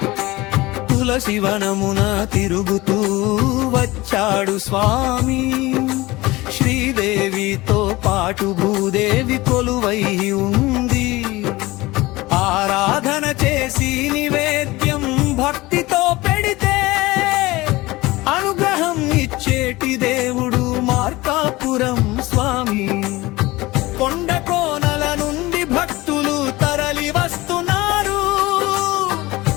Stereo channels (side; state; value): right; quieter; 20.2 dB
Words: తులసివనమున తిరుగుతూ వచ్చాడు స్వామి, శ్రీదేవితో పాటు భూదేవి కొలువై ఉంది. ఆరాధన చేసి నివేద్యం భక్తితో పెడితే అనుగ్రహం ఇచ్చేటి దేవుడు మార్కాపురం స్వామి. కొండ కోనల నుండి భక్తులు తరలి వస్తున్నారు,